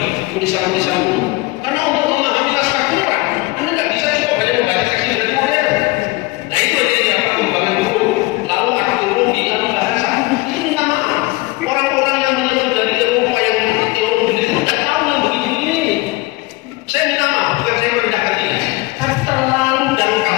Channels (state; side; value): quieter; right; 22.1 dB